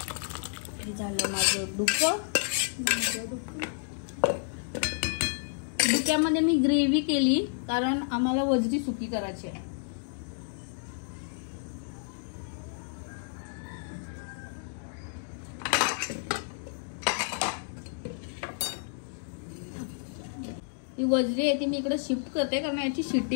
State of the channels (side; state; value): right; silent; digital silence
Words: झालं माझं डुकं. डुक्यामध्ये मी ग्रेव्ही केली कारण आम्हाला वजरी सुकी करायची आहे. ही वजरी आहे ती मी इकडे शिफ्ट करते कारण याची